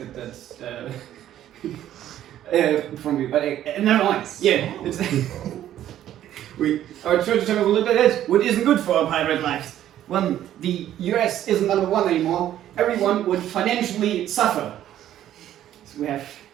that from you, but never mind. Yeah, it's our treasure chamber will look like this, which isn't good for our pirate lives. When the US isn't number one anymore, everyone would financially suffer. So we have.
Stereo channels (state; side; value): quieter; left; 11.9 dB